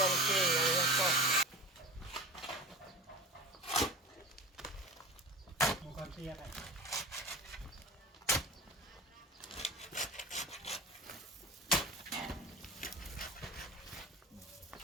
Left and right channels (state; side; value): normal; both; correlation 0.32